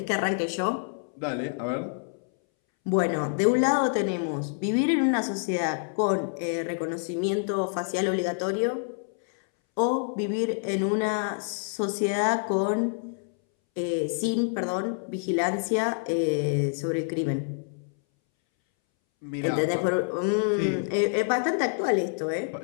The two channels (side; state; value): right; silent; 60 dB below the other